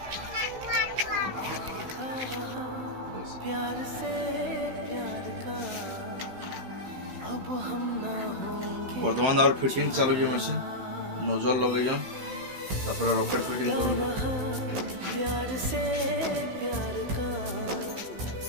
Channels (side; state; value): left; late; 16 ms